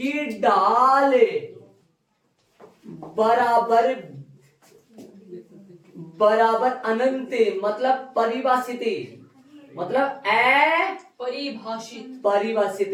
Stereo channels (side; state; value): both; identical; correlation 1.00